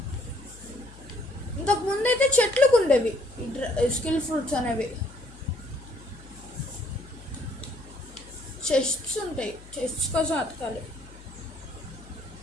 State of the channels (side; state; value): left; noise; hum, 19 dB below the sound